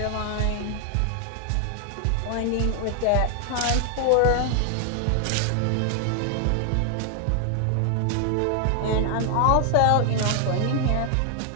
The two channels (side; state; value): both; different; correlation 0.00